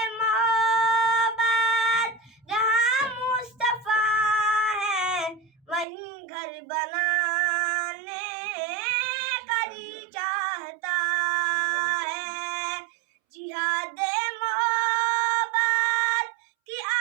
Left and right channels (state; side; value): drops out; left; at 5.9 s